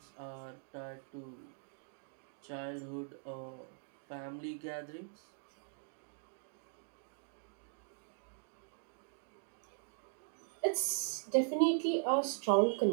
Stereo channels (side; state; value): left; silent; digital silence